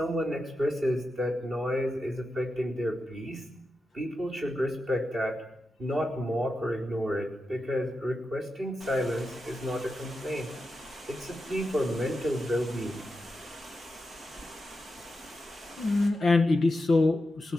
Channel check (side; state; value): both; normal; correlation 0.89